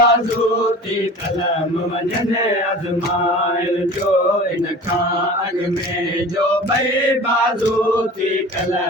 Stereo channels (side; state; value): both; normal; correlation 0.39